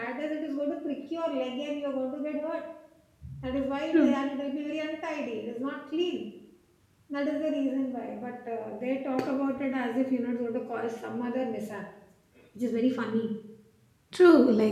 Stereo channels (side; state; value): both; identical; correlation 1.00